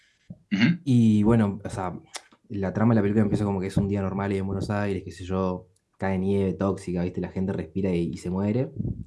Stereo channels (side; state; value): both; identical; correlation 1.00